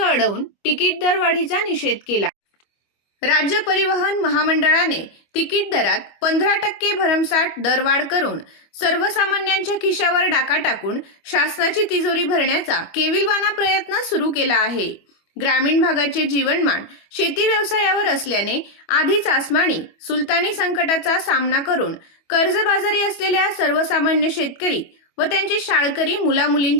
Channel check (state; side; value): late; right; 25 ms